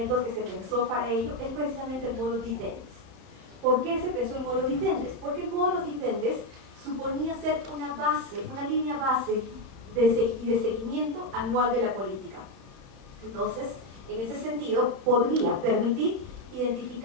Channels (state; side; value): late; left; 31 ms